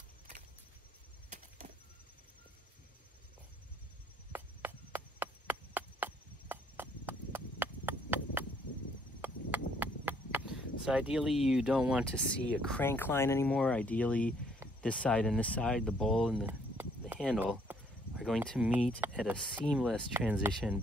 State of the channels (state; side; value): normal; both; correlation 0.65